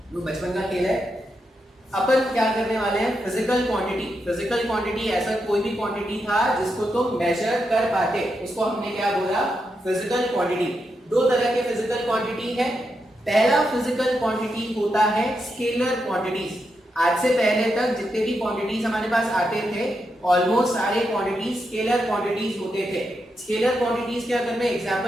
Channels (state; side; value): normal; both; correlation 0.84